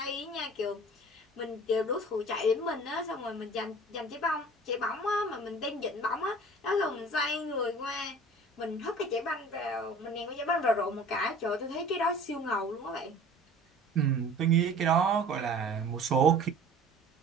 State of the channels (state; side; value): normal; both; correlation 0.45